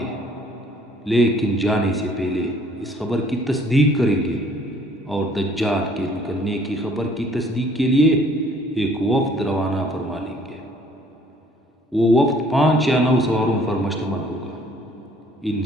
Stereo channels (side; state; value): both; normal; correlation 0.58